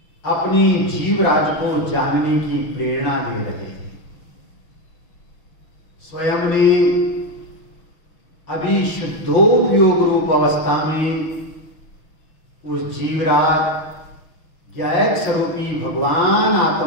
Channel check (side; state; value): right; late; 6.2 ms